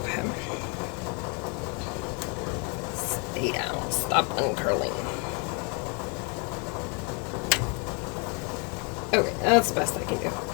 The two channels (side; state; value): right; quieter; 35.0 dB